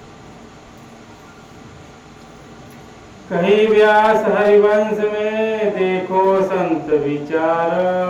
कहीं व्यास हरिवंश में देखो संत विचार।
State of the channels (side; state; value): both; identical; correlation 1.00